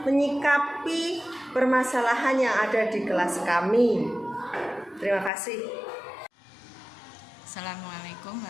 menyikapi permasalahan yang ada di kelas kami. Terima kasih. Assalamualaikum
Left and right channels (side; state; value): right; drops out; at 5.3 s